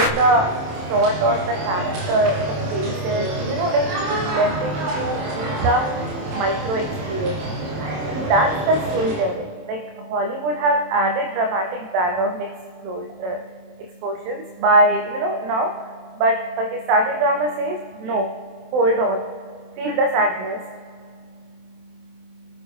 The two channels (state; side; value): late; left; 27 ms